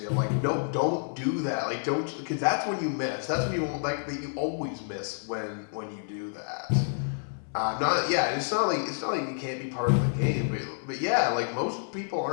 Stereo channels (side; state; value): right; silent; 59 dB below the other